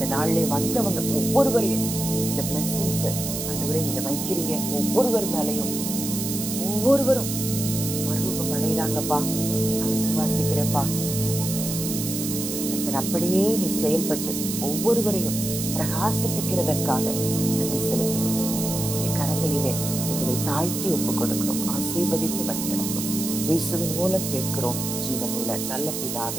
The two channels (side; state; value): right; noise; hiss, 4 dB below the sound